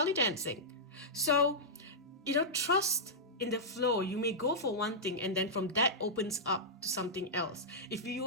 dancing. So trust in the flow. You may go for one thing and then from that opens up to something else. If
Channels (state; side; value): normal; both; correlation -0.12